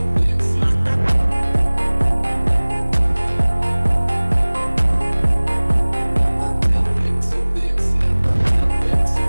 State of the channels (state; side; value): inverted; both; correlation -1.00